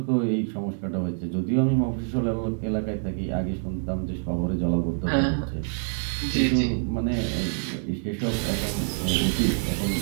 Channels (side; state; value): left; silent; 61 dB below the other